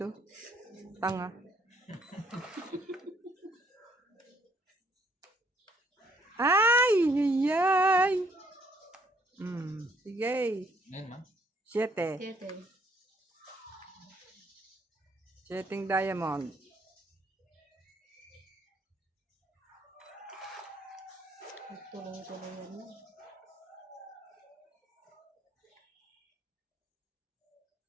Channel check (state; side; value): normal; both; correlation 0.67